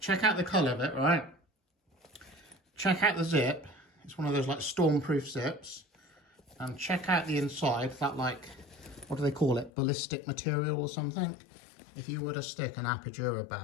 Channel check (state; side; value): drops out; right; at 9.7 s